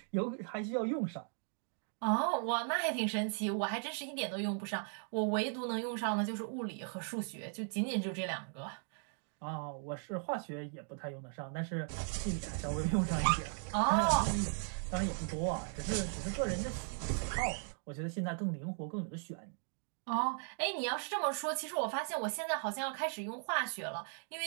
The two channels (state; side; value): silent; left; 53 dB below the other